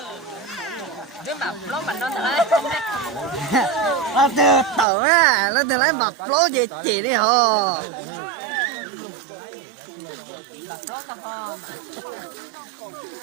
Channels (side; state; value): left; drops out; at 4.9 s